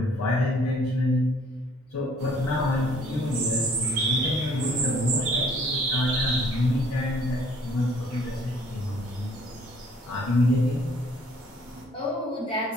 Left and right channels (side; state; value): both; normal; correlation 0.59